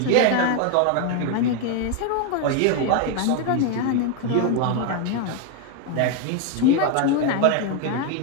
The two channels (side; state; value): both; different; correlation 0.01